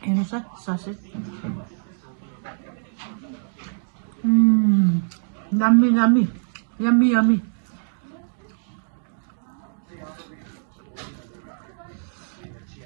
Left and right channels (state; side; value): silent; left; digital silence